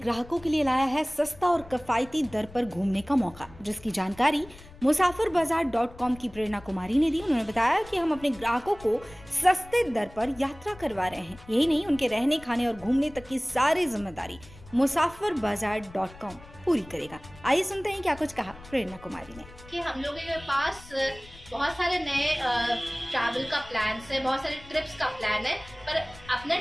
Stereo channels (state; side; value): noise; left; rumble, 20 dB below the sound